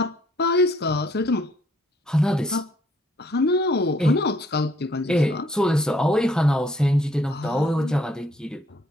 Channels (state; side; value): normal; both; correlation 0.65